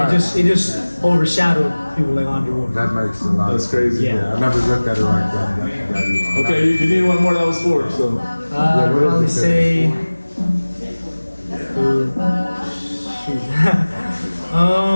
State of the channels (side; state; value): both; inverted; correlation -1.00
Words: it just overshadowed people like Andre Ward. That makes a lot. That's crazy. Yeah. I never looked at it like that. Okay, you need one more that was 4. So I'd what is probably it? say. Shoot.